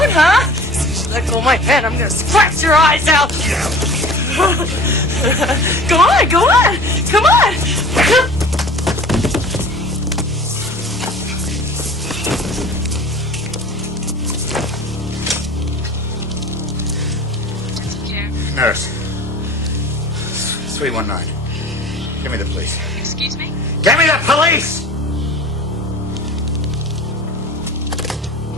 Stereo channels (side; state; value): both; normal; correlation 0.42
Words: huh? As soon as you let go of my hand, I'm going to scratch your eyes out. Go on, go on. Come on. Nurse. 319. Give me the police. Excuse me? Give me the police!